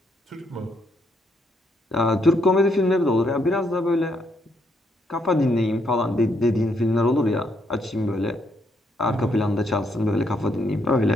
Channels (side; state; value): both; normal; correlation 0.74